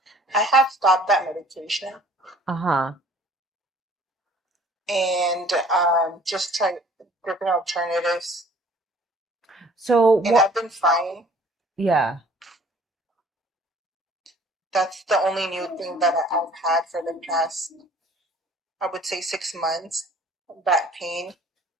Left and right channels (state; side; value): normal; both; correlation 0.53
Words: I have stopped that medication Uh-huh. and just tried different alternatives, So and what? I've been fine. Yeah. That's the only new thing that I've had for the past, I would say, 6 months, back pain.